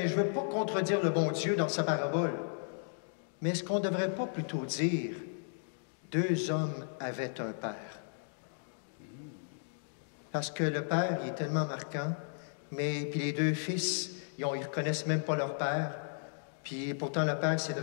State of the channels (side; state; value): right; silent; digital silence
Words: « je ne veux pas contredire le bon Dieu dans sa parabole. Mais est-ce qu'on ne devrait pas plutôt dire, « 2 hommes avaient un père. » Parce que le père, il est tellement marquant, mais puis les 2 fils, ils ne reconnaissent même pas leur père. Puis pourtant, le père, c'est